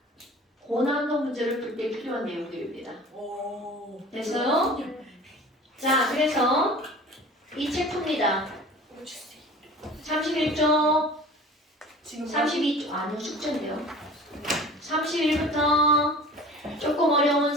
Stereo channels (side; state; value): both; normal; correlation 0.42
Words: 고난도 문제를 풀 때 필요한 내용들입니다. 오. 됐어요? 자, 그래서 이 책 풉니다. 31쪽, 지금 32쪽, 아니요, 숙제인데요. 31부터 조금 어려운